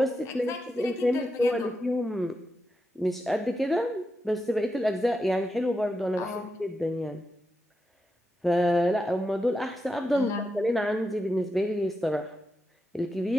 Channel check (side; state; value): both; normal; correlation 0.87